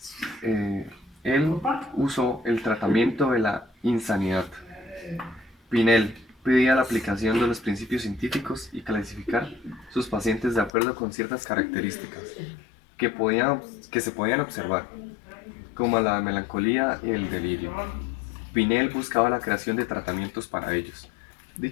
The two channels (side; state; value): right; drops out; at 10.7 s